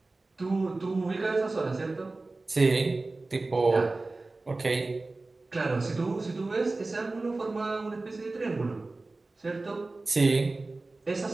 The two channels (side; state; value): left; quieter; 3.3 dB